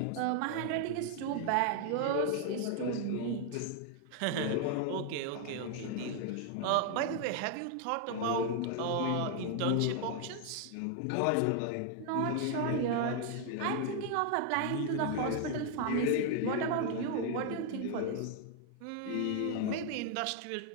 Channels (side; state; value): both; different; correlation 0.00